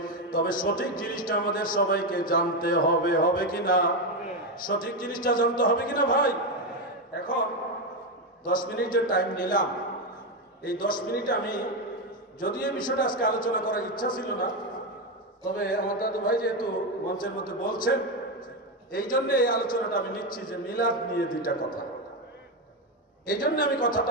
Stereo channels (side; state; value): both; normal; correlation 0.09